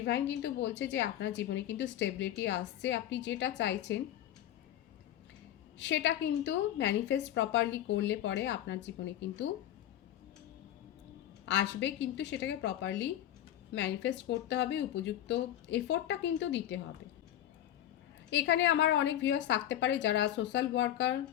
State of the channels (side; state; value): right; quieter; 12.0 dB